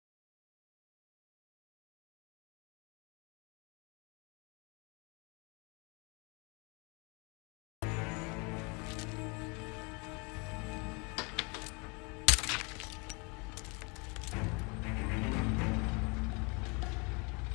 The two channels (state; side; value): quieter; right; 30.7 dB